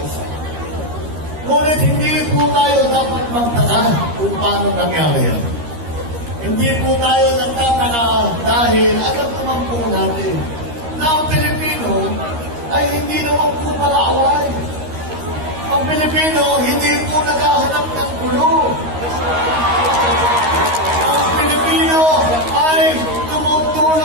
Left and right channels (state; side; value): late; left; 13 ms